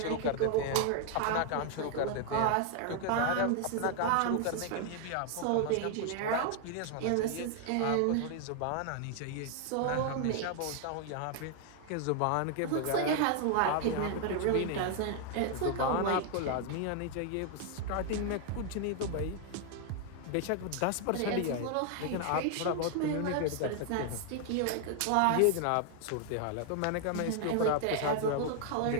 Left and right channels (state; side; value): different; both; correlation 0.00